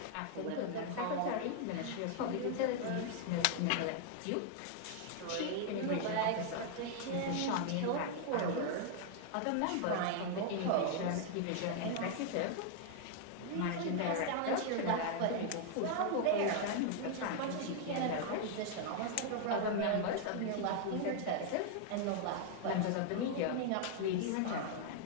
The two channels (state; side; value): different; both; correlation 0.00